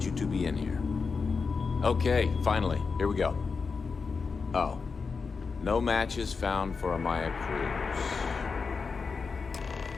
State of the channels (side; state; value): right; quieter; 5.0 dB